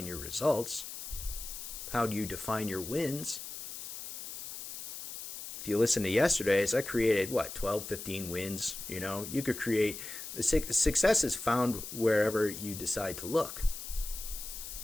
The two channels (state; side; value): noise; left; hiss, 9 dB below the sound